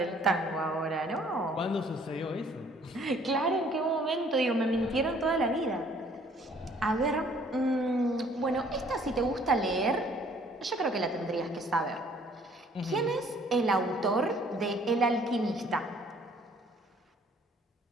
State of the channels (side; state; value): both; normal; correlation 0.59